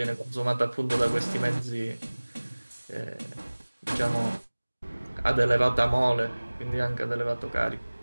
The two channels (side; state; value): both; inverted; correlation -1.00